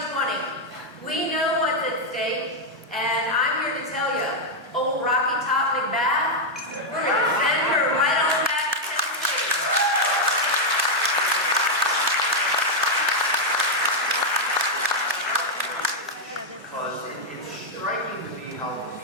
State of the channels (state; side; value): normal; both; correlation -0.01